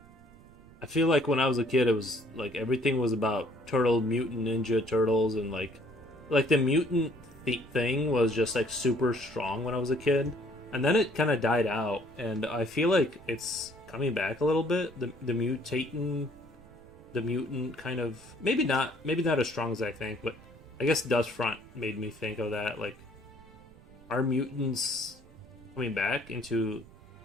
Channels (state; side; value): noise; right; rumble, 23 dB below the sound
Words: I feel like when I was a kid, it was like everything was about turtle, mutant, ninja turtles, and like the mutant thing was just like super strong when I was a kid, and then it kind of died out, and I feel like it's coming back a little bit. The mutant kind of maybe not as strong as I think, but I guess Dust Front made me think of that. Like, are mutants coming back into